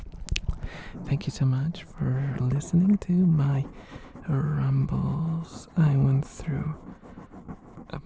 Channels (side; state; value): both; identical; correlation 1.00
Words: Thank you so much for listening to my rumbles. I went through a